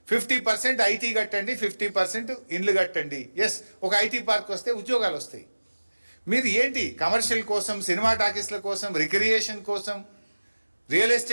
50% ఐటీ కట్టండి, 50% ఇండ్లు కట్టండి. ఎస్, ఒక ఐటీ పార్క్ వస్తే ఉద్యోగాలు వస్తాయి. మీరు ఏంటి కమర్షియల్ కోసం, సినిమా టాకీస్ల కోసం, రిక్రియేషన్ కోసం, రియల్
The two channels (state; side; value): inverted; both; correlation -1.00